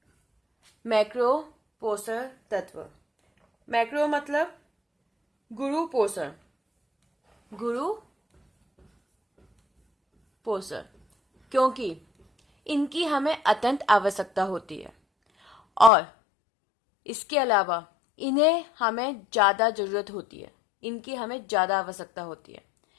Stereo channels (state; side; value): drops out; right; at 15.9 s